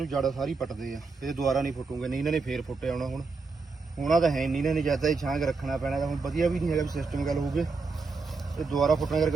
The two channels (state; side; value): quieter; left; 4.3 dB